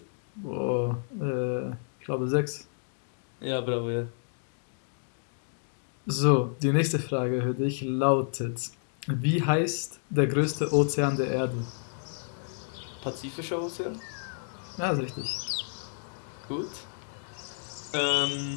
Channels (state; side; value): silent; right; digital silence